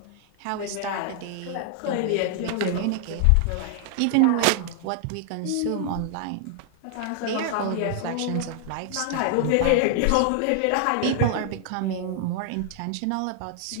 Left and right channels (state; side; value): different; both; correlation 0.00